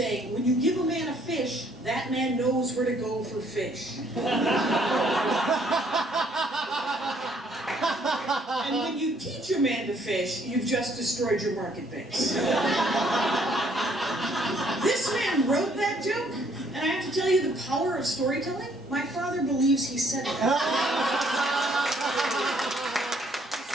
when you give a man a fish, that man knows where to go for fish." And when you teach a man to fish, you've just destroyed your market base. This man wrote that joke, and I have to tell you the power of storytelling. My father believes he said it.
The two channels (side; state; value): both; normal; correlation 0.65